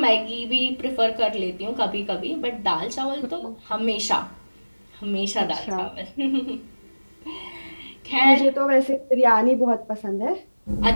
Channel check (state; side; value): inverted; both; correlation -1.00